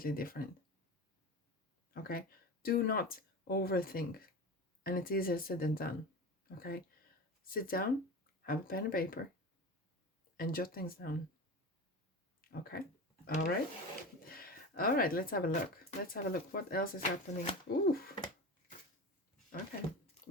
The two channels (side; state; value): both; normal; correlation 0.29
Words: different. Okay? Do not overthink. And it's easier said than done. Okay? Sit down, have a pen and paper, and jot things down. Okay? All right? All right, let's have a look. Let's have a look. What else is happening? Ooh. Okay.